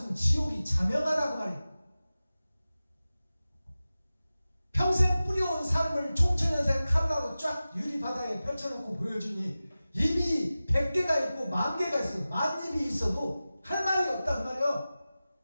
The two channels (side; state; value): both; inverted; correlation -0.96